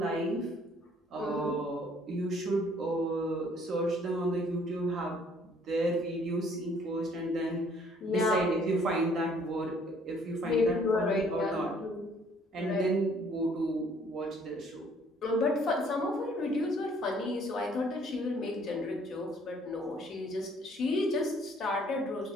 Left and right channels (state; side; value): normal; both; correlation 0.61